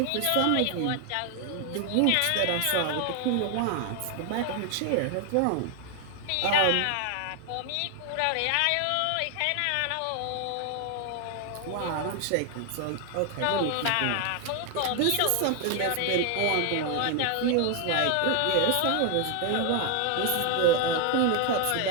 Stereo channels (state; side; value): different; both; correlation 0.00